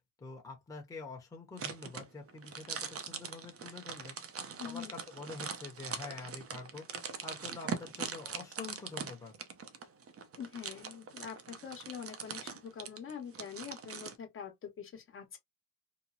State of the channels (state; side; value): normal; both; correlation 0.17